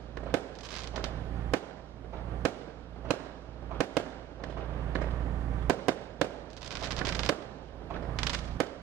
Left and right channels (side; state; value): left; quieter; 11.7 dB